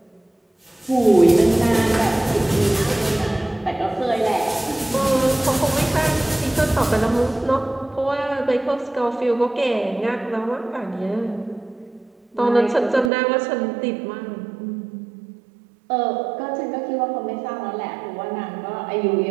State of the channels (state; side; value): drops out; left; at 13.1 s